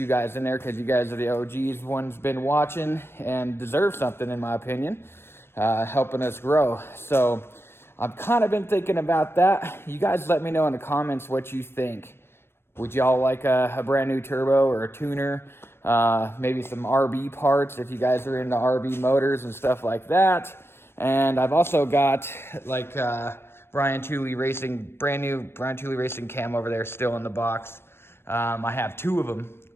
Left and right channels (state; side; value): late; right; 0.12 ms